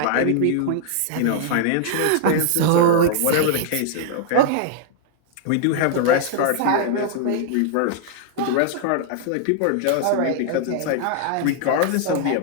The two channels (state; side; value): different; both; correlation -0.01